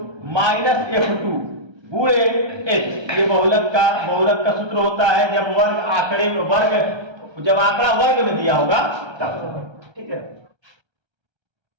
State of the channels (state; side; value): late; left; 1.3 ms